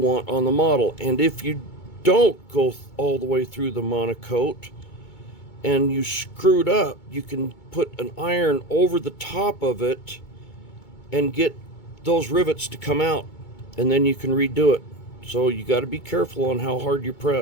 on the model. And if you don't go all the way through the monocoat and you screwed up, you can put an iron over the top of it and get those rivets to come out, and then you can redo it. So you got to be careful on how hard you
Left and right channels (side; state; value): right; late; 2.2 ms